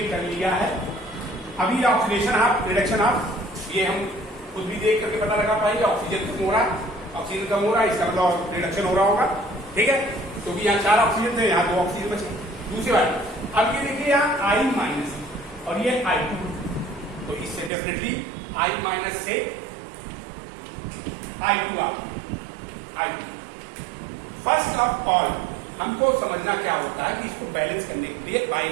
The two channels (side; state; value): left; drops out; at 17.7 s